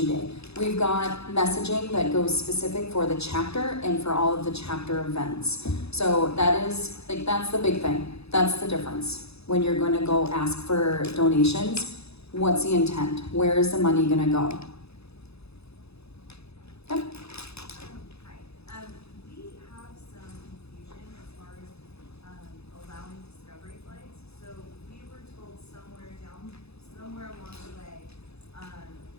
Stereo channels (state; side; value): late; right; 0.79 ms